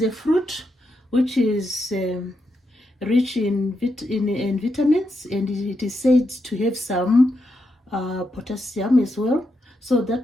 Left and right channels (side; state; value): both; normal; correlation 0.83